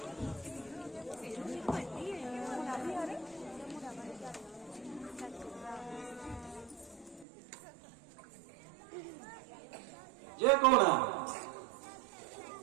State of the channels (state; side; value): drops out; left; at 7.2 s